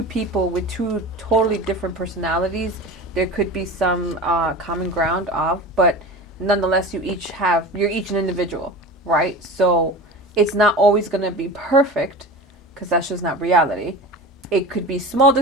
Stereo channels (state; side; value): normal; both; correlation 0.32